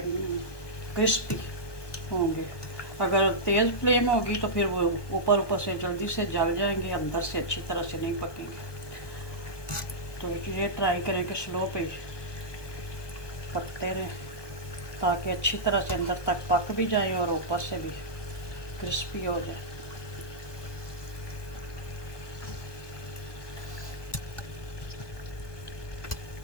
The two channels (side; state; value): right; late; 1.2 ms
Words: क्रिस्पी होंगे। अगर तेज़ फ्लेम होगी तो फिर वो ऊपर ऊपर से जल्दी से जल जाएंगे, अंदर से अच्छी तरह से नहीं पकेंगे। तो ये ट्राई करें कि स्लो पे पकते रहें, ताकि अच्छी तरह से अंदर तक पक भी जाए और ऊपर से भी क्रिस्पी हो जाए।